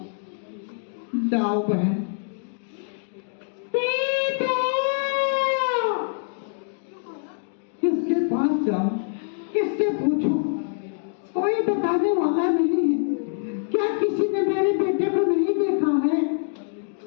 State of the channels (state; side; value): silent; right; digital silence